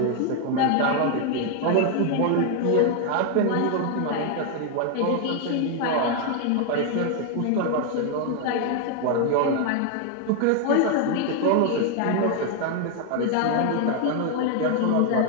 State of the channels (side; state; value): both; different; correlation 0.00